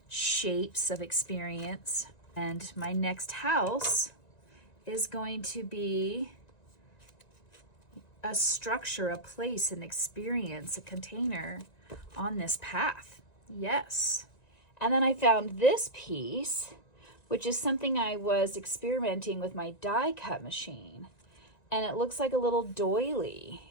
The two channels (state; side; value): late; right; 1.9 ms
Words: shapes of experience. And my next house is going to be a structure, a place, an experience, a container on this path. Yes. And then I found this piece, which is something I was experimenting with my die cut machine. And it looks like a little